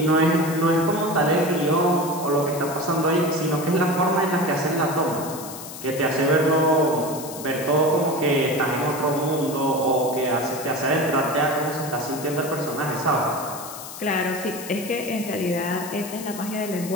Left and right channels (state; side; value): noise; left; hiss, 12 dB below the sound